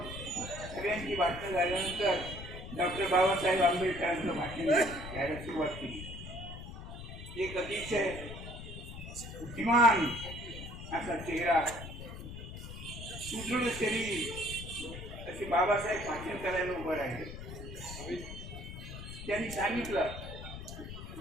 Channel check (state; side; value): noise; left; rumble, 10 dB below the sound